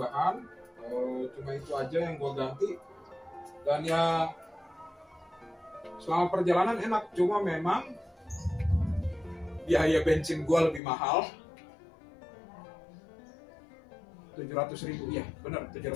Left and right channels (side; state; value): right; drops out; at 10.8 s